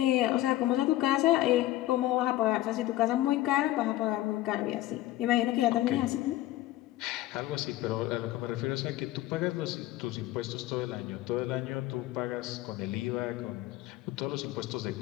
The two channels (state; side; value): quieter; right; 15.7 dB